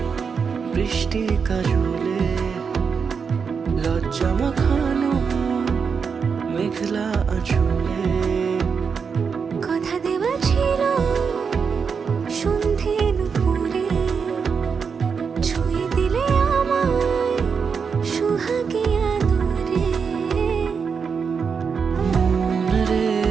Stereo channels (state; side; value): quieter; left; 5.9 dB